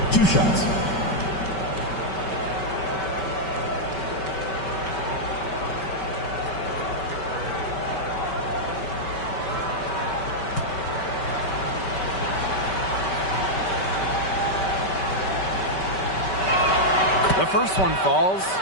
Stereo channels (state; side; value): late; right; 5.2 ms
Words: 2 shots. The first one falls.